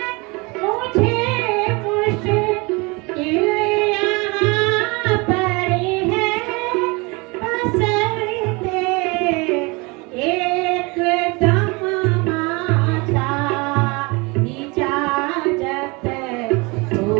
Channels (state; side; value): quieter; left; 27.2 dB